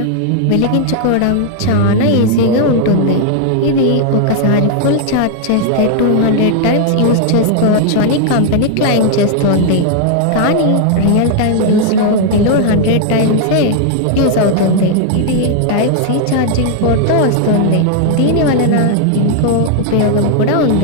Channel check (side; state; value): both; different; correlation 0.00